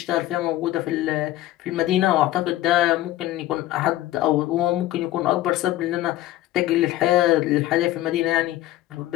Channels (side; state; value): right; quieter; 15.2 dB